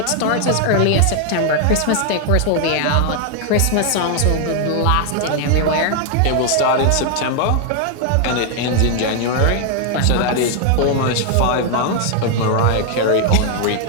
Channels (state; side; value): different; both; correlation 0.00